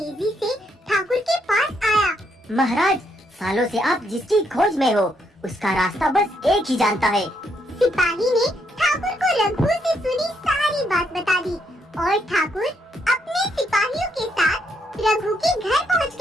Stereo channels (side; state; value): both; normal; correlation 0.75